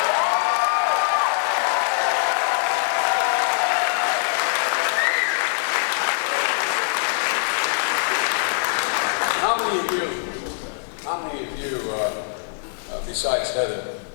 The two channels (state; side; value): silent; right; digital silence